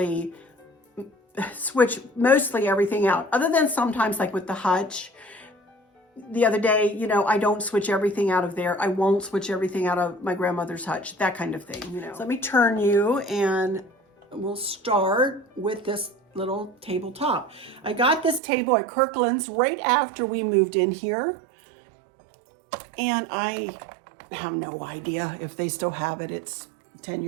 switch mostly everything out. Other than sometimes like with the hutch. The other day, I don't switch everything out of there. I won't switch everything out of my grandmother's hutch, that kind of thing, So let me turn you and we'll start with this little tabletop. I got this table at Kirkland's right after we moved in here. And I have no idea if they still have it. It's 10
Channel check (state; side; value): drops out; left; at 18.4 s